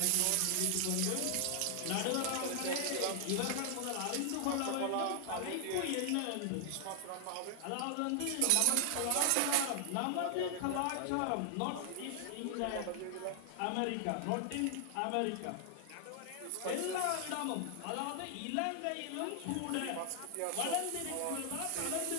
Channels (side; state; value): both; different; correlation 0.00